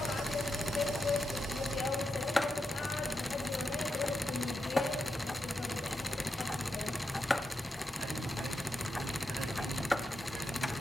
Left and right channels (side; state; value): both; normal; correlation 0.87